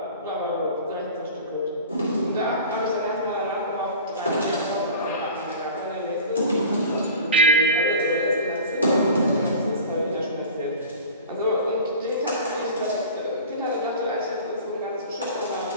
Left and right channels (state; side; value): inverted; both; correlation -0.38